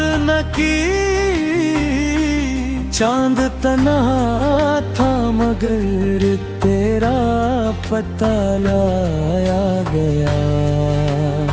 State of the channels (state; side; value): identical; both; correlation 1.00